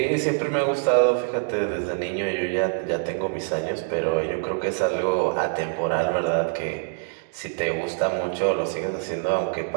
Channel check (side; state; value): left; silent; digital silence